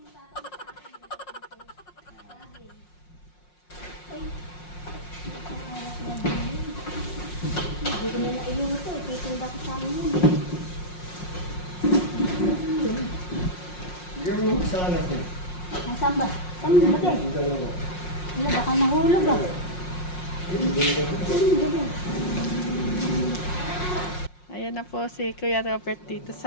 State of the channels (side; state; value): right; late; 5.6 ms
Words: Hindi ko na nailuto. Titinda ko sa amin. Nasaan ba? Saan mo ba? Wala, baka nahulog ah. Ayan na po si Kuya Robert dito